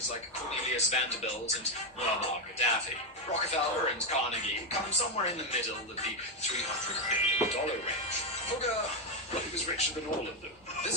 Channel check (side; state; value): both; normal; correlation 0.07